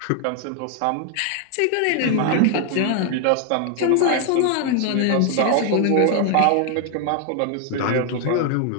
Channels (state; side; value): different; both; correlation 0.00